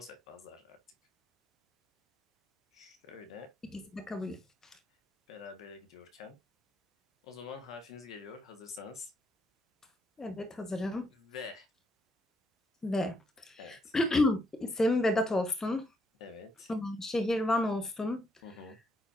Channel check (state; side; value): normal; both; correlation 0.75